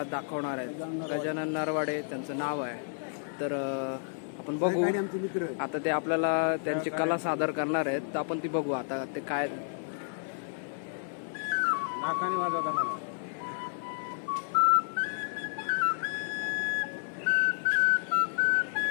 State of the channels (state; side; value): silent; right; digital silence